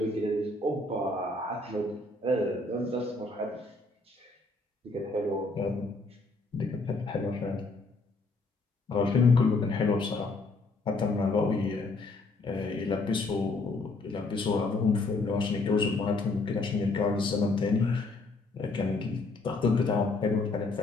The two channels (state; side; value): quieter; right; 3.4 dB